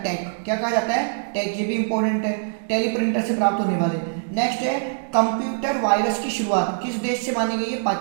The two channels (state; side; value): silent; left; digital silence